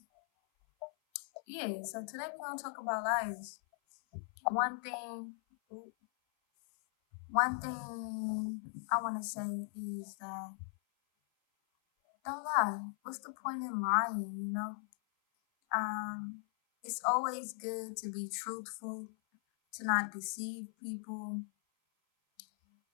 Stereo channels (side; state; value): right; silent; 52 dB below the other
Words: Yeah, so today we're going to talk about liars. One thing, one thing I want to say is that don't lie. What's the point in lying, you know? It's always good to be truthful, to not deceive people,